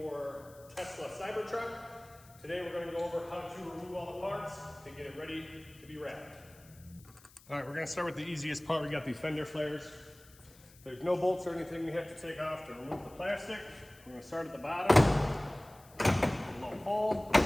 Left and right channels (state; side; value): noise; left; hiss, 24 dB below the sound